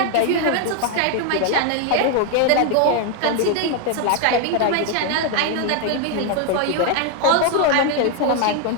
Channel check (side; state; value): both; different; correlation 0.01